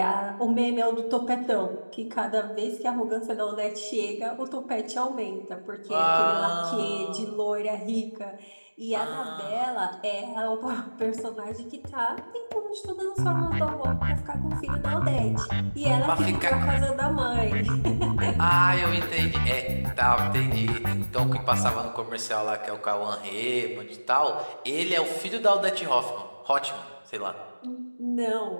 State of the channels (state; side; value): inverted; both; correlation -1.00